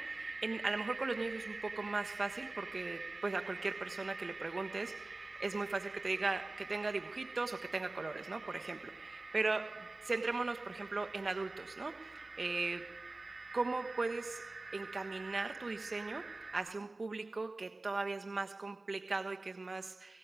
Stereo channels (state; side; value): quieter; left; 3.1 dB